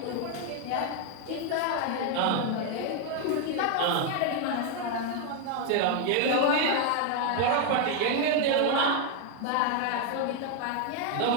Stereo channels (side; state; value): both; different; correlation 0.01